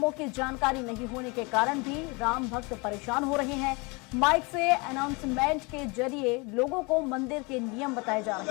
की जानकारी नहीं होने के कारण भी राम भक्त परेशान हो रहे हैं। माइक से अनाउंसमेंट के जरिए लोगों को मंदिर के नियम बताए जा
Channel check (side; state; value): right; quieter; 28.4 dB